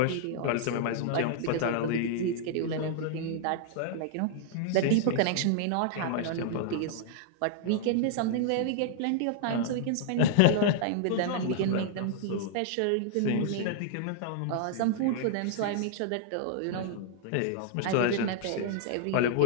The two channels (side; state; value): both; different; correlation -0.01